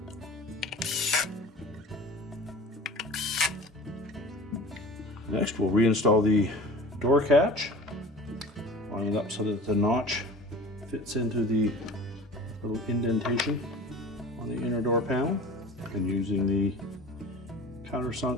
Next, we'll reinstall the door catch, line it up so that the notch fits into the little indentation on the inner door panel, and using the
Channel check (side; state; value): both; normal; correlation 0.39